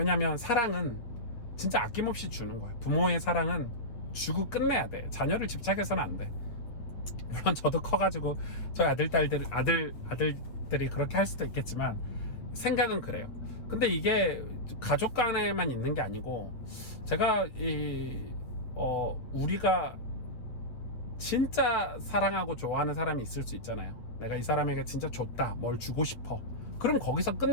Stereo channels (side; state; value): right; late; 8.1 ms